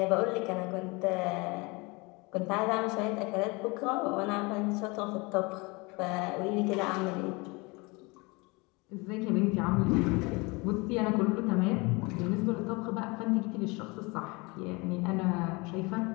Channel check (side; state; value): right; quieter; 26.4 dB